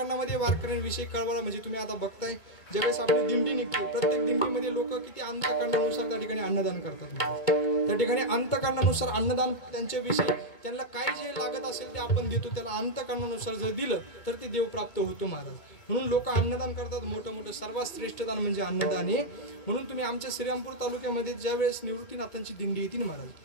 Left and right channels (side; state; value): right; late; 2.2 ms